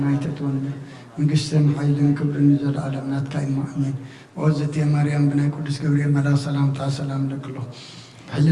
ይተትወና መንግስትን ሓይልን ክብርን ዘለዓለም ናትካ ኢማ ኣሜን ወዘቴ ማርያም ብናይ ቅዱስ ገብርኤል መልኣክ ሰላምታ ሰላም ለክሎ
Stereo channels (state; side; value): identical; both; correlation 1.00